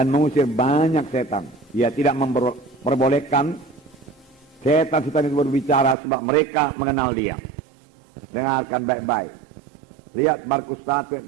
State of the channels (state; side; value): drops out; left; at 6.0 s